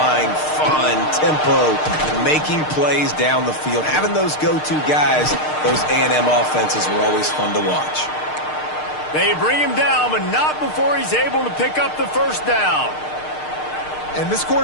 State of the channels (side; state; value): right; late; 6.6 ms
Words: fun, tempo, making plays down the field. Having those go-to guys, those A&M offenses were always fun to watch. They bring him down, but not before he's able to pick up the first down. And this